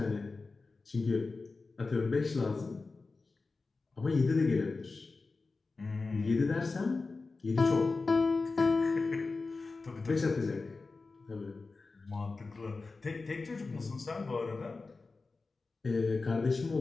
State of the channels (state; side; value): quieter; right; 3.9 dB